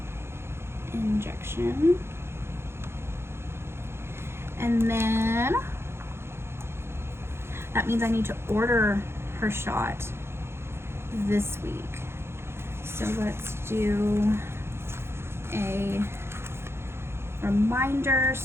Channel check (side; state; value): left; late; 0.12 ms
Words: injection. And then that means I need to order her shot this week. So let's do a reminder